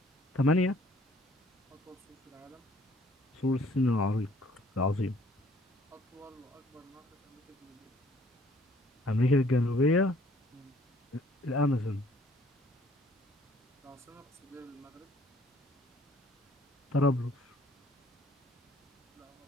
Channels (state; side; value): normal; both; correlation 0.59